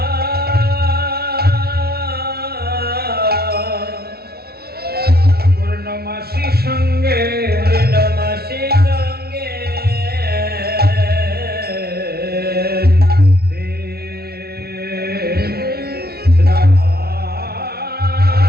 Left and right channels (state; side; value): late; left; 0.45 ms